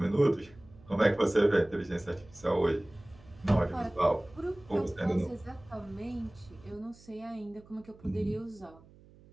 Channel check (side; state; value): right; noise; hum, 24 dB below the sound